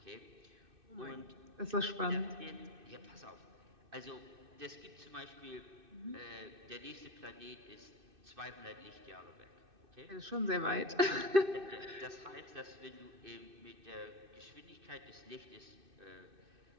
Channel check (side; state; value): left; late; 2.6 ms